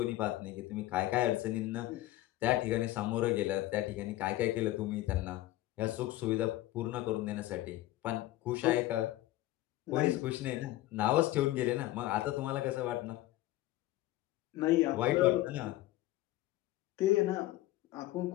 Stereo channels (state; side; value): quieter; right; 16.1 dB